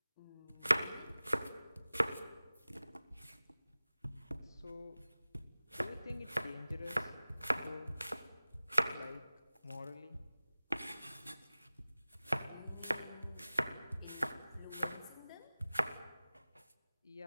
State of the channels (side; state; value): both; inverted; correlation -0.98